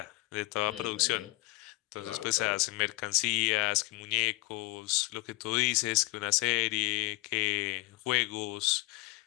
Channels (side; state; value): right; quieter; 21.4 dB